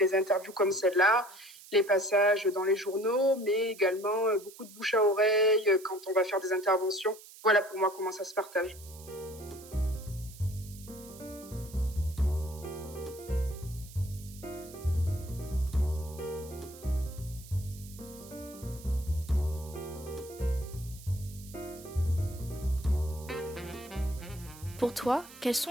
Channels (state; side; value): noise; right; hiss, 19 dB below the sound